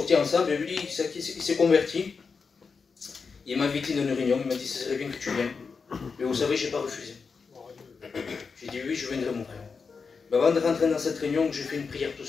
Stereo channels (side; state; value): right; quieter; 5.2 dB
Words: ensemble, et lui, il s'est converti. Il m'a invité dans une réunion, il m'a dit, ce serait bien que tu viennes. Mais vous savez, je n'ai pas refusé. J'ai dit, oui, je viendrai, mon frère. Mais avant de rentrer dans cette réunion, j'ai fait une prière tout